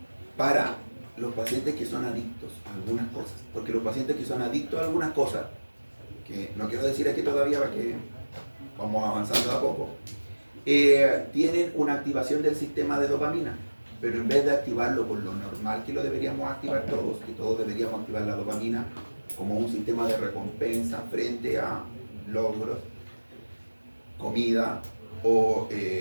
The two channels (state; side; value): inverted; both; correlation -1.00